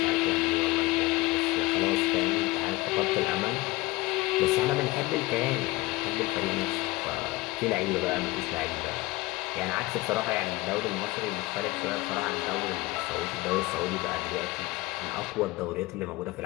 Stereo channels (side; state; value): right; quieter; 20.8 dB